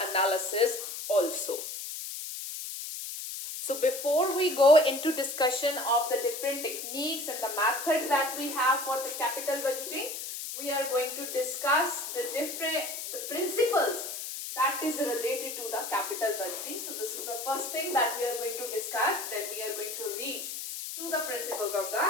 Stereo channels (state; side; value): noise; left; hiss, 7 dB below the sound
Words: analysis also. So before we go into discussion of the different techniques and the methods that we have for the capital budgeting, we are going to discuss the principles that is related to the capital budgeting. So this is the first thing that we are going to discuss. Then we are going to reach to the principles of the